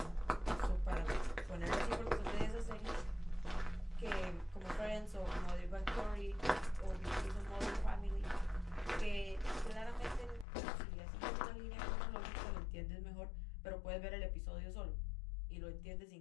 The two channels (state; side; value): drops out; right; at 10.5 s